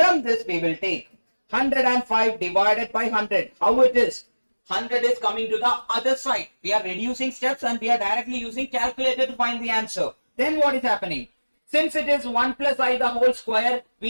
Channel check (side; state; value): both; inverted; correlation -1.00